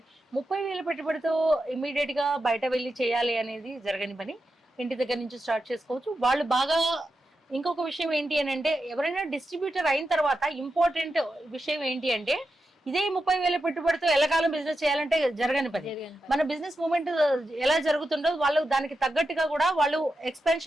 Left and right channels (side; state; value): both; normal; correlation 0.89